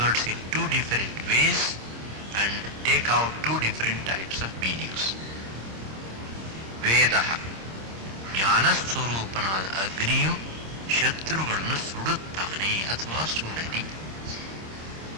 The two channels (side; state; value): left; late; 26 ms